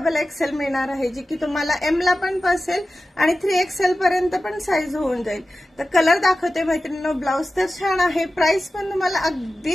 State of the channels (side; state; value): both; normal; correlation 0.94